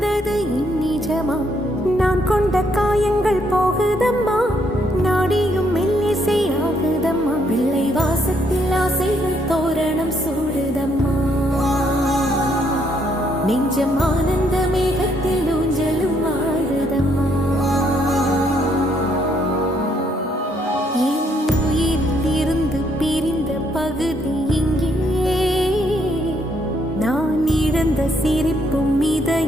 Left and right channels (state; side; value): normal; both; correlation 0.72